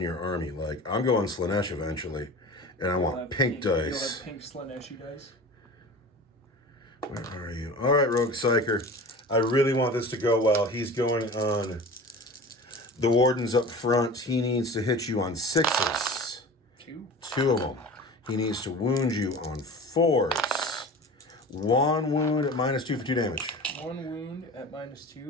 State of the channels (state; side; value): normal; both; correlation 0.36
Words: army. Like, I'm going Slanesh eventually. And I want pink dice. You'll have pink Slaneshi dice. Where are you? All right, Rogue Psyker. I really want this to go well. He's going on the Wardens up front. He needs to hit you on 6s. 2 of them. He needs to wound you on 4s. 1 wound at -2 for 2 damage. 1 wound at